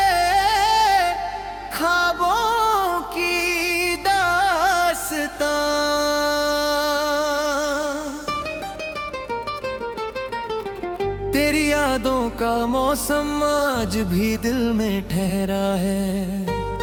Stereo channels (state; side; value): identical; both; correlation 1.00